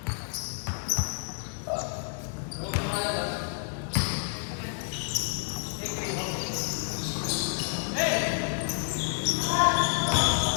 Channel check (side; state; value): right; silent; digital silence